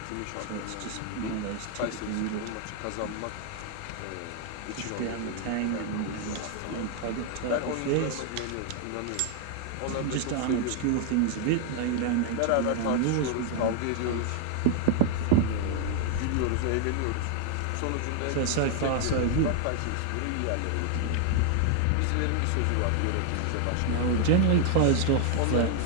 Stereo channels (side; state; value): both; different; correlation 0.00